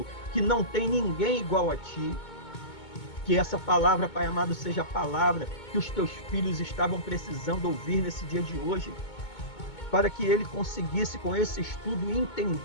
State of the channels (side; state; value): right; late; 2.2 ms